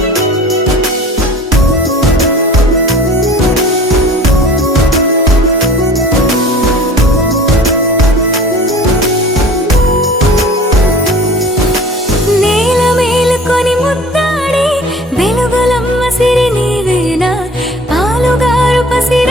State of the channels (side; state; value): both; normal; correlation 0.44